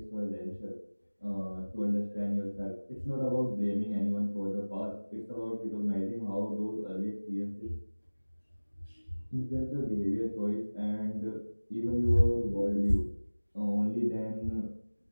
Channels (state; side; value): inverted; both; correlation -1.00